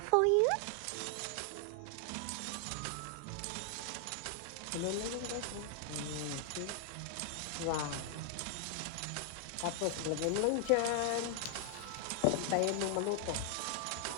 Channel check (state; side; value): different; both; correlation 0.00